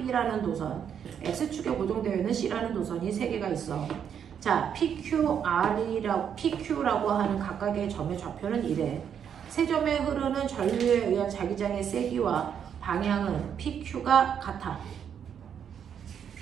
도선, x축에 고정되어 있는 C라는 도선이 3개가 있어. 자, PQ라고 하는 각각의 점의 좌표는 이래. 세 점에 흐르는 전류에 의한 자기장의 세기와 방향은 PQ가 같아.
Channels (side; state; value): left; quieter; 8.2 dB